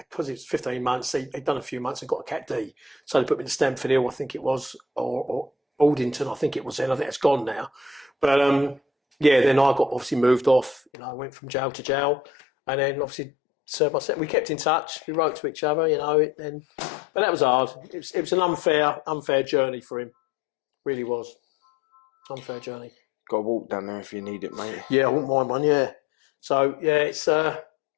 it was 15 months. He'd done a few months and got a Cat D, so they put him in Stamford Hill, I think it was, or Aldington, I think it was then. I think it's gone now. But yeah, then I got obviously moved off. You know, I went from jail to jail, and then obviously served my sentence. We kept in touch. We wrote to each other. You know, but that was hard. It was an unfair journey for him. Really was unfair journey. Got to walk down there if you need it, mate. Yeah, I wouldn't mind one. Yeah. So yeah, it's a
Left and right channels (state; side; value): drops out; right; at 10.8 s